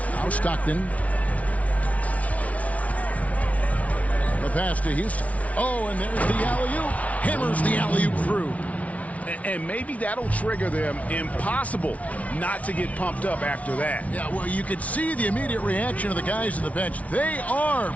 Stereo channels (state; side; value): late; right; 0.067 ms